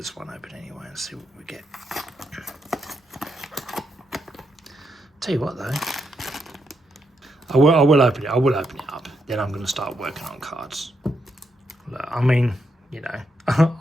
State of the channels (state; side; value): normal; both; correlation 0.81